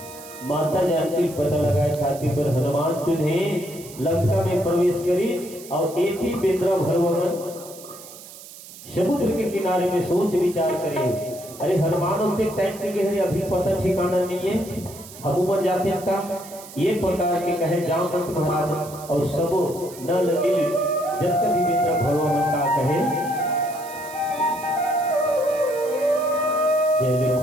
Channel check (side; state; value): right; noise; hiss, 17 dB below the sound